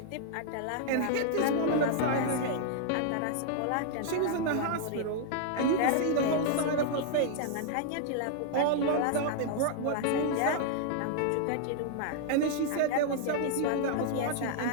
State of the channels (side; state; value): both; different; correlation -0.01